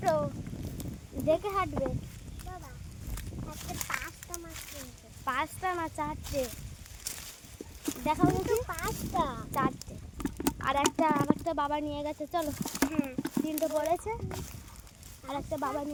দেখে হাঁটবে। বাবা আজকে 5টা মাছ কিনছে। 5টা না 4টে? দেখাও দেখি। 5টা, 4টে। আর একটা বাবা নিয়ে গেছে, চলো। হ্যাঁ, 3টে পড়েছে, আর একটা বাবা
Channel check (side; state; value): both; identical; correlation 1.00